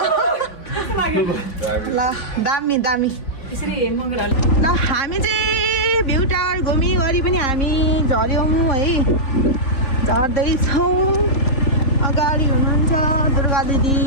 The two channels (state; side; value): late; right; 3.5 ms